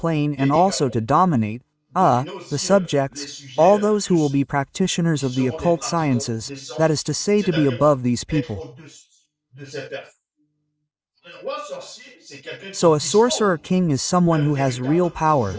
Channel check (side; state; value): both; identical; correlation 1.00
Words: and also to dominate, the subjects, all those who will be practitioners of the occult sciences, that is to say, to be above these people. So a Sorcerer King is someone who has real power,